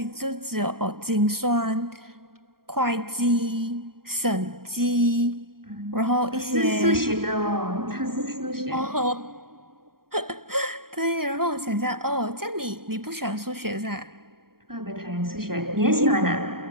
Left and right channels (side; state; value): left; late; 0.93 ms